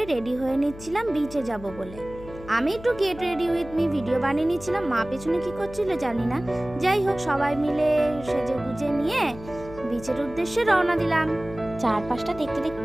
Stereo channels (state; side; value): noise; left; hum, 16 dB below the sound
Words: রেডি হয়ে নিচ্ছিলাম বিচে যাব বলে। আমি একটু get ready with me video বানিয়ে নিচ্ছিলাম। মা পেছনে কী করছিল জানি না। যাই হোক, সবাই মিলে সেজে গুজে নিয়ে বিচের উদ্দেশ্যে রওনা দিলাম। চারপাশটা দেখতে